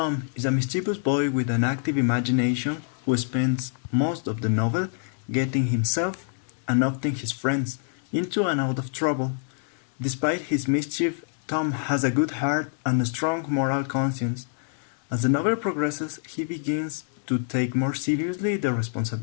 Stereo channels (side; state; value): right; silent; digital silence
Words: is a mischievous boy with an active imagination who spends most of the novel getting himself and often his friends into and out of trouble. Despite his mischief, Tom has a good heart and a strong moral conscience. As the novel progresses, he begins to take more seriously the